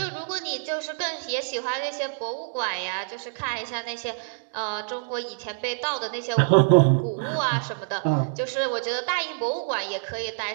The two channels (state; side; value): silent; left; digital silence